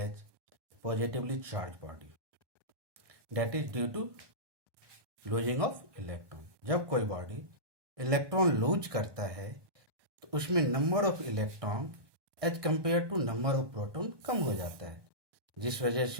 positively charge body. That is due to losing of electron. जब कोई body electron lose करता है तो उसमें number of electron as compare to number of proton कम हो जाता है, जिस वजह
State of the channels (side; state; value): left; late; 1.2 ms